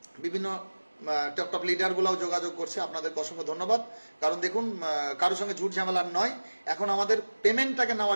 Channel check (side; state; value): both; inverted; correlation -1.00